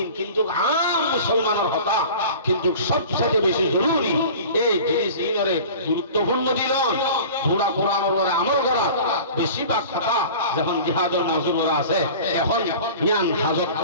কিন্তু আম মুসলমানের হতা কিন্তু সবচেয়ে বেশি জরুরি এই জিনিস ইনরে গুরুত্বপূর্ণ দিলন পুরা কোরআনের উপরে আমল করা বেশি ভাগ কথা যখন জিহাদের মজুর করা আছে এখন জ্ঞান হাজত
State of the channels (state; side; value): inverted; both; correlation -0.40